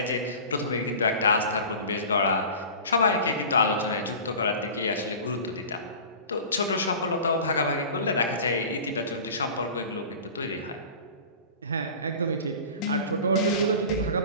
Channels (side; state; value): both; inverted; correlation -0.38